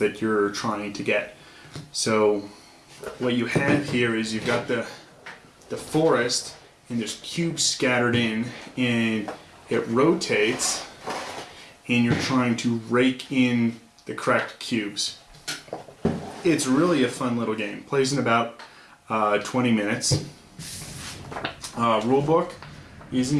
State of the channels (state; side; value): identical; both; correlation 1.00